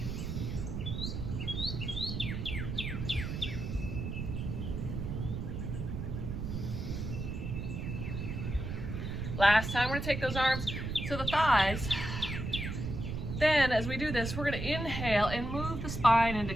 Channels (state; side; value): noise; right; rumble, 4 dB below the sound